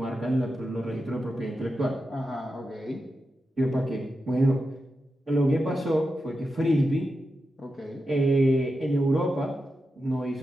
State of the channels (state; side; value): normal; both; correlation 0.89